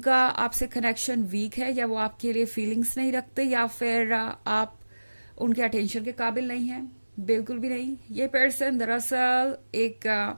आपसे कनेक्शन वीक है या वो आपके लिए फीलिंग्स नहीं रखते या फिर आप उनके अटेंशन के काबिल नहीं हैं। बिल्कुल भी नहीं। ये पर्सन दरअसल एक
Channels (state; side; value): inverted; both; correlation -1.00